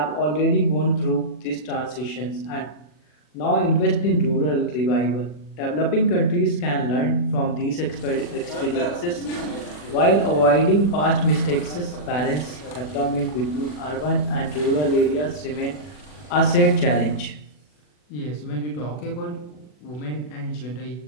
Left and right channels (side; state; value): right; late; 40 ms